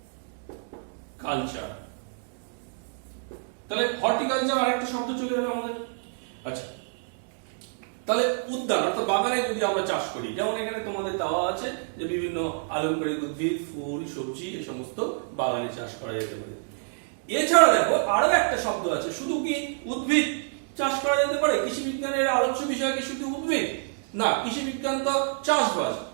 তাহলে হর্টিকালচার আরেকটা শব্দ চলে এলো আমাদের। আচ্ছা, তাহলে উদ্যান অর্থাৎ বাগানে যদি আমরা চাষ করি, যেমন এখানে তোমাদের দেওয়া আছে যে বিভিন্ন আলংকারিক উদ্ভিদ ফুল সবজি এই সমস্ত বাগানে চাষ করা যেতে পারে। এছাড়া দেখো আরো একটা শব্দ আছে, শুধু কি উদ্ভিদ চাষ করা যেতে পারে? কৃষি বিজ্ঞানের আলোচ্য বিষয় কি শুধু উদ্ভিদ? না, কৃষি বিজ্ঞান তো চাষবাস,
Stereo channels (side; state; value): left; silent; digital silence